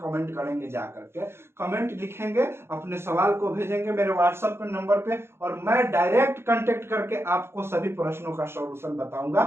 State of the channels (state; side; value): late; left; 0.12 ms